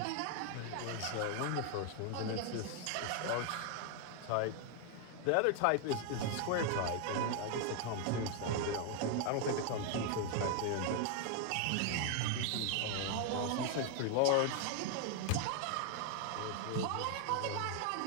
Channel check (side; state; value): both; different; correlation 0.00